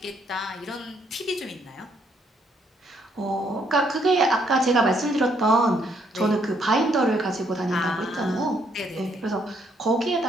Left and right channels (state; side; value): normal; both; correlation 0.71